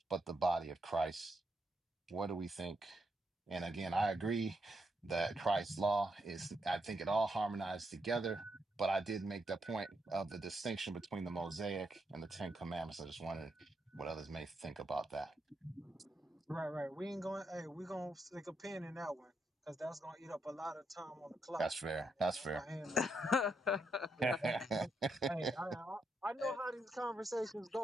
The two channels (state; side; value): normal; both; correlation 0.80